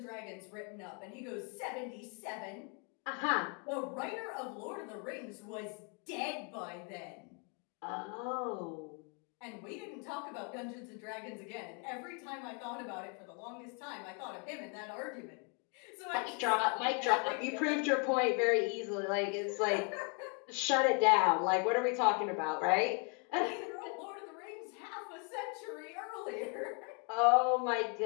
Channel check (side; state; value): right; quieter; 37.2 dB